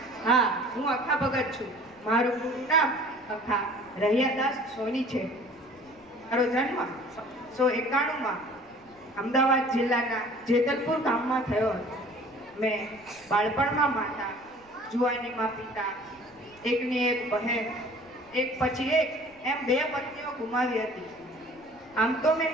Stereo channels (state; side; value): noise; left; rumble, 29 dB below the sound